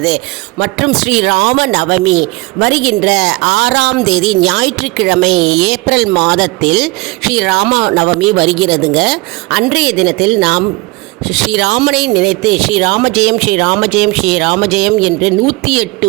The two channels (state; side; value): quieter; left; 23.4 dB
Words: மற்றும் ஸ்ரீராம நவமி வருகின்ற 6ஆம் தேதி ஞாயிற்றுக்கிழமை ஏப்ரல் மாதத்தில் ஸ்ரீராம நவமி வருகிறதுங்க. அன்றைய தினத்தில் நாம் ஸ்ரீராமனை நினைத்து ஸ்ரீராமஜெயம் ஸ்ரீராமஜெயம் ஸ்ரீராமஜெயம் என்று